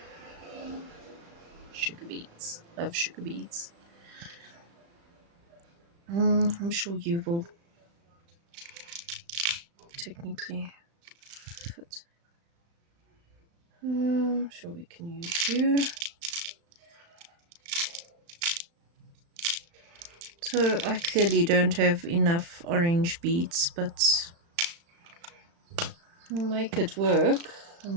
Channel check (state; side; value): late; left; 35 ms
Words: Sugar beads. Love sugar beads. I'm sure you will technically fit. I'm sure we can use you. So I clearly don't have enough orange beads, but I'll make it work. I